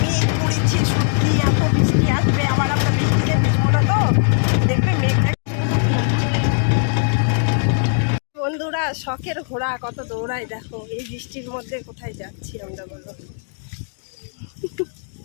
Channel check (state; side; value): silent; right; digital silence